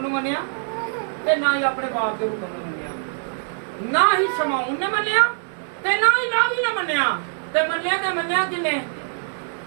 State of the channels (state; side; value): silent; left; 63 dB below the other